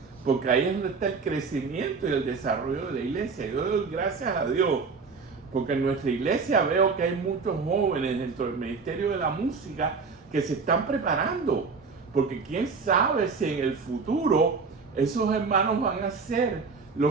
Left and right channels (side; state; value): left; quieter; 4.8 dB